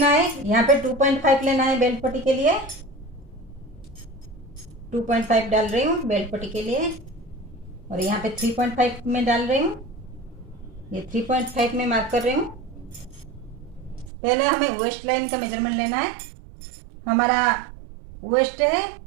है, यहाँ पे 2.5 लेना है बेल्ट पट्टी के लिए। 2.5 डाल रही हूँ बेल्ट पट्टी के लिए और यहाँ पे 3.5 में डाल रही हूँ। ये 3.5 में मार्क कर रही हूँ। पहले हमें वेस्ट लाइन का मेजरमेंट लेना है। हमारा वेस्ट है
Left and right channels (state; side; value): drops out; left; at 14.1 s